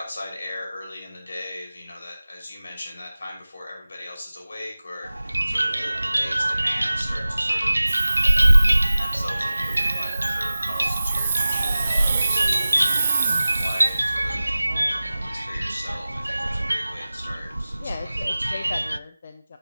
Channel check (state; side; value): inverted; both; correlation -0.97